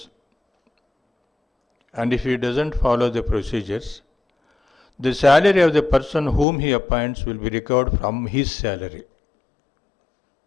and if he doesn't follow the procedures, the salary of the person whom he appoints will be recovered from his salary,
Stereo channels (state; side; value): drops out; right; at 6.5 s